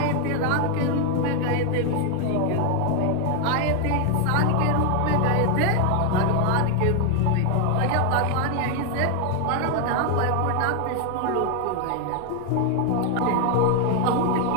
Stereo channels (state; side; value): different; both; correlation 0.00